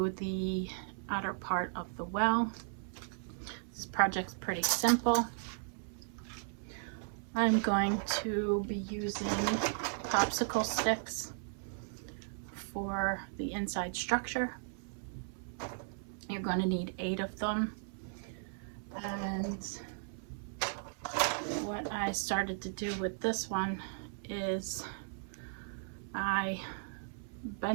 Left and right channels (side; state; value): left; silent; 54 dB below the other